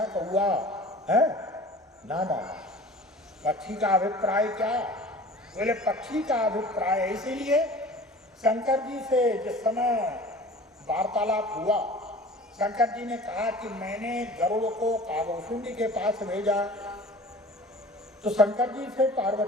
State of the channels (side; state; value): both; normal; correlation 0.42